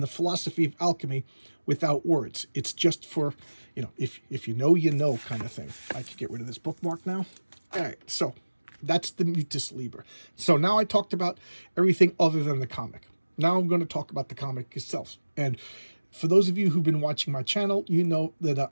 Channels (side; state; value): both; inverted; correlation -1.00